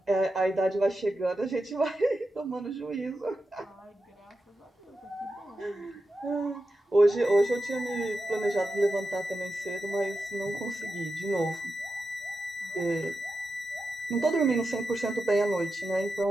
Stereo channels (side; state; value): both; normal; correlation 0.90